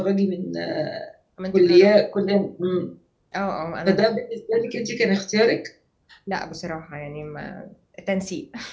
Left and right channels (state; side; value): identical; both; correlation 1.00